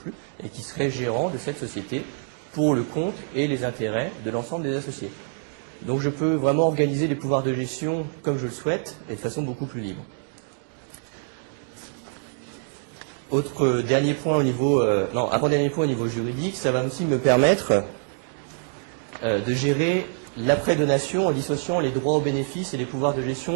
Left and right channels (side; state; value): left; silent; 59 dB below the other